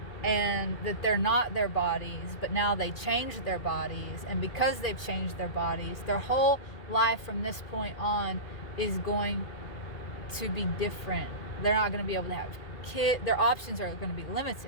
and that they're not their bodies, but now they changed their bodies, and because they've changed their bodies, their whole life from this point on is going to be different. They're not going to be able to have kids. Their options are going to be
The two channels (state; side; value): late; right; 2.5 ms